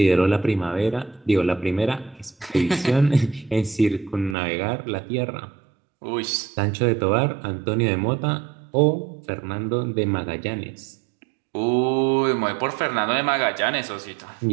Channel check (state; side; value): drops out; left; at 4.4 s